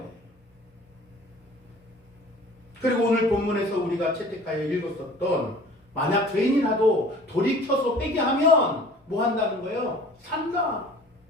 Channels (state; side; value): normal; both; correlation 0.47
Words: 그리고 오늘 본문에서 우리가 채택하여 읽었었던 만약 죄인이라도 돌이켜서 회개하면 뭐 한다는 거예요? 산다.